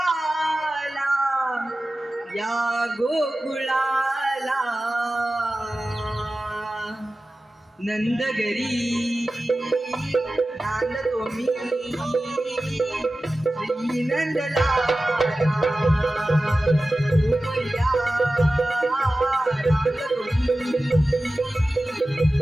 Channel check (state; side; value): normal; both; correlation 0.95